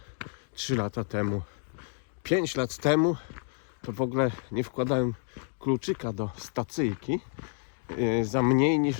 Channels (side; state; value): right; silent; 58 dB below the other